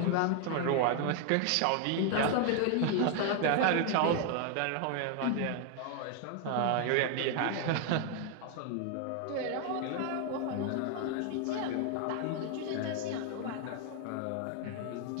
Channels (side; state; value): both; different; correlation 0.01